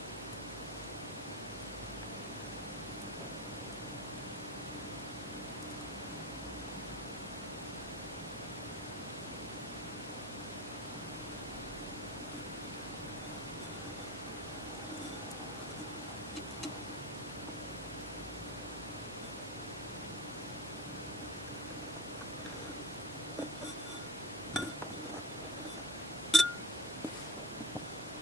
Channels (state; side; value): normal; both; correlation 0.26